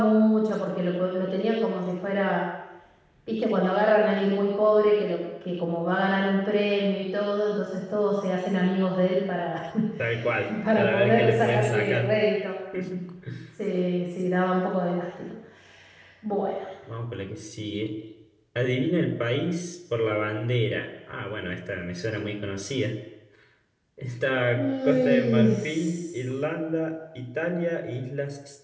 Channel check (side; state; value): both; identical; correlation 1.00